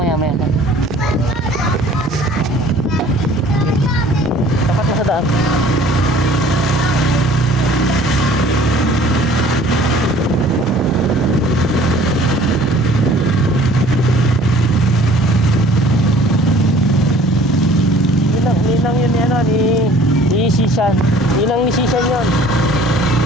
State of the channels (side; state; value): both; normal; correlation 0.52